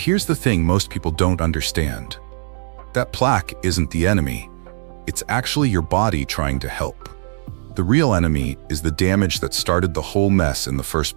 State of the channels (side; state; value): left; silent; digital silence